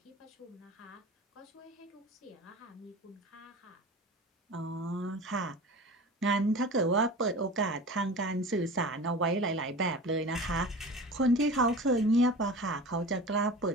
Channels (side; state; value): both; normal; correlation 0.35